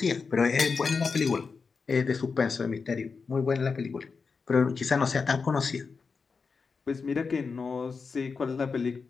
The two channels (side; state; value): right; quieter; 5.0 dB